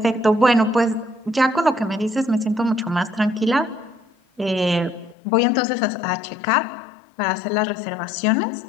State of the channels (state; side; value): drops out; right; at 5.2 s